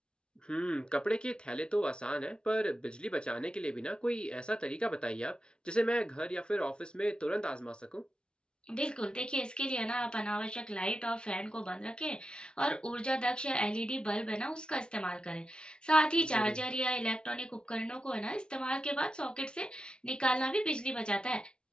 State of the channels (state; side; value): late; right; 0.054 ms